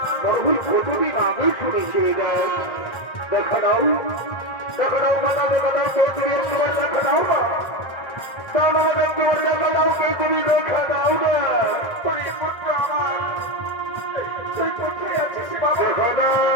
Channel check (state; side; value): late; right; 1.8 ms